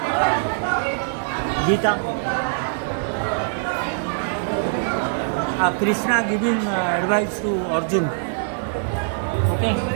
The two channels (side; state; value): left; silent; 57 dB below the other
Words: Gita, Krishna giving advice to Arjun. Okay.